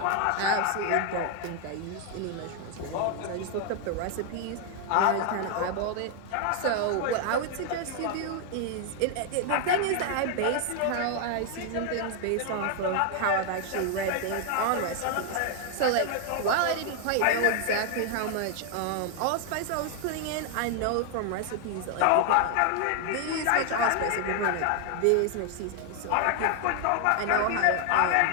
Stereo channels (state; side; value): different; both; correlation 0.00